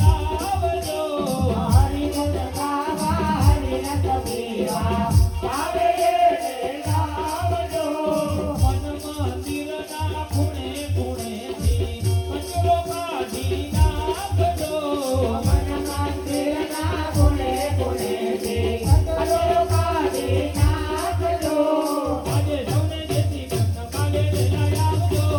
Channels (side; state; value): both; identical; correlation 1.00